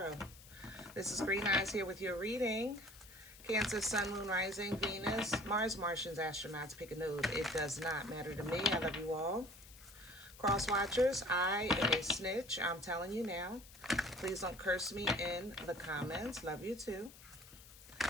This is Green Eyes here with your reading. Cancer, Sun, Moon, Rising, Venus, Mars, Martians, astronauts, pick a node. It does not matter to me. I love you all. Cross watchers, I am a snitch. I'm telling you now. Please don't curse me in the comments. Love you too.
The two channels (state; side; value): noise; left; hiss, 19 dB below the sound